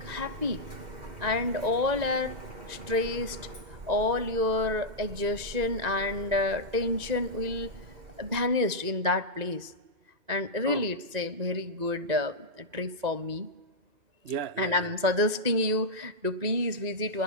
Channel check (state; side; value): late; left; 2.0 ms